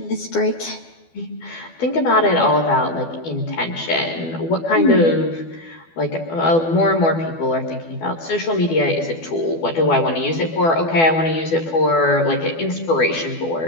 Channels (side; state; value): right; late; 12 ms